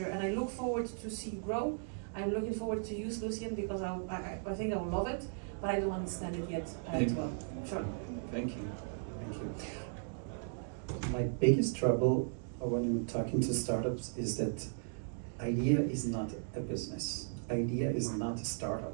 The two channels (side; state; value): left; silent; digital silence